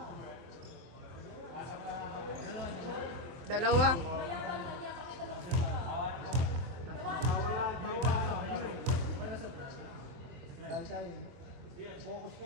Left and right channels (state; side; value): late; left; 24 ms